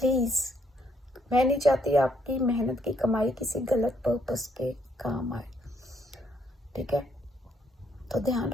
मैं नहीं चाहती आपकी मेहनत की कमाई किसी गलत पर्पस के काम आए। ठीक है, तो ध्यान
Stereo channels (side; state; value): both; normal; correlation 0.71